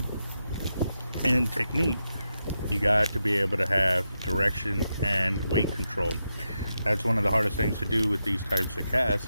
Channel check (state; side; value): inverted; both; correlation -0.86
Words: and technique, you got to be able to have direction and weight control. That's one of the hardest things to do with these types of